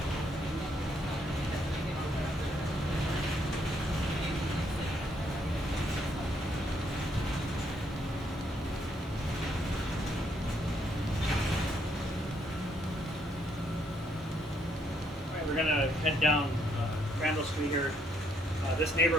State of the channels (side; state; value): both; normal; correlation 0.71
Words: We're going to head down Randall Street here. This